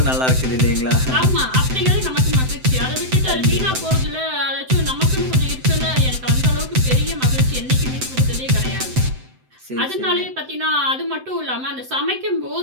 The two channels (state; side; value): late; left; 7.8 ms